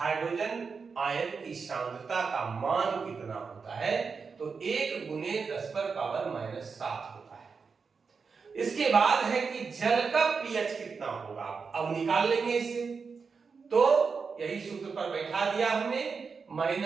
आयन की सांद्रता का मान कितना होता है, तो 1 गुने 10 पर पावर माइनस 7 होता है। इसके बाद है कि जल का पीएच कितना होगा, अब निकाल लेंगे इसे। तो यही सूत्र पर बैठा दिया हमने,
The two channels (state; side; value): quieter; left; 5.2 dB